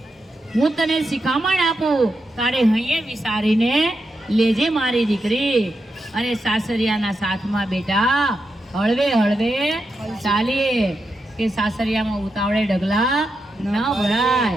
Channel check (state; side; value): normal; both; correlation 0.86